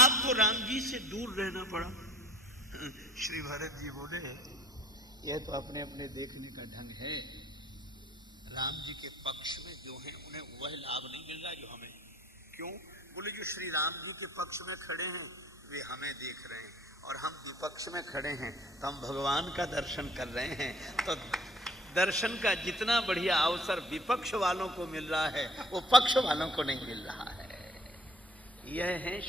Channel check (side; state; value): both; normal; correlation 0.53